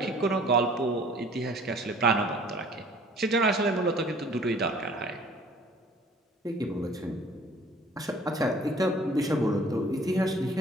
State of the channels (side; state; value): both; normal; correlation 0.52